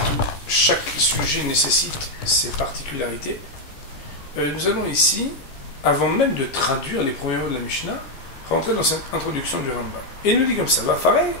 chaque sujet nécessite ses particularités. Nous allons ici, avant même de traduire les premiers mots de la Mishnah, rentrer dans cette introduction du Rambam. Et il nous dit comme ça,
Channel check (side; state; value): right; late; 14 ms